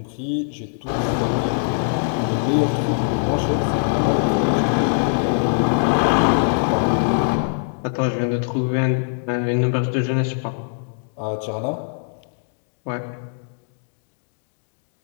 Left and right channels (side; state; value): right; silent; digital silence